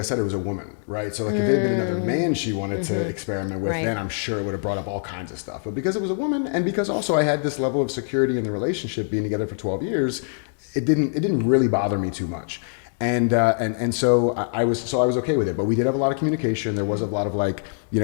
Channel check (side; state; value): right; silent; digital silence